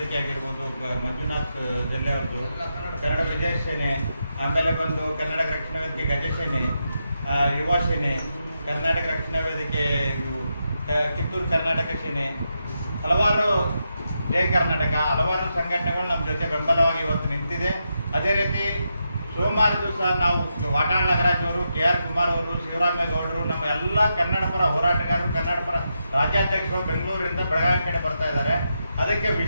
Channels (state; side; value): inverted; both; correlation -0.85